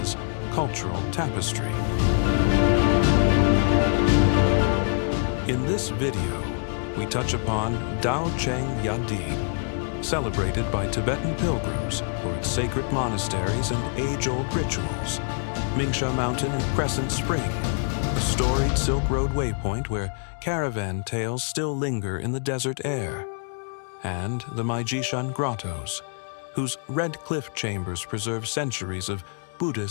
cultural tapestry. In this video, we touch upon Daocheng Yading, celebrated by Tibetan pilgrims for its sacred monasteries and age-old rituals, Mingsha Mountain and Crescent Spring, a storied Silk Road waypoint where caravan tales still linger in the desert air, and the Maijishan grottoes, whose red cliff chambers preserve centuries of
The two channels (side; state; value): right; silent; 61 dB below the other